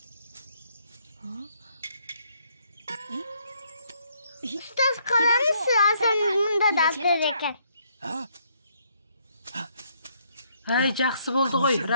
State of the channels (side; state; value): both; inverted; correlation -0.70